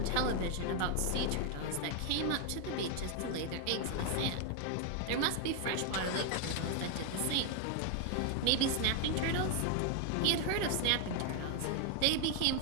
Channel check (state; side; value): different; both; correlation 0.00